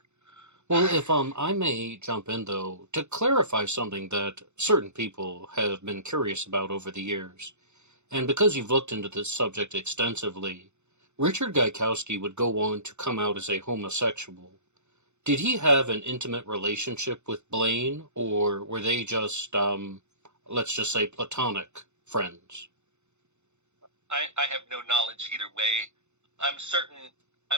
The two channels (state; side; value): late; left; 0.83 ms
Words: Well, if I may jump in, though, to clarify something that certain people have been curious about over the years, and because you've looked into this subject extensively, Richard Gaikowski would go on to come out as a homosexual. Did he have an intimate relationship with Blaine, or were they just, let's just say, platonic friends? I have no knowledge either way. I'm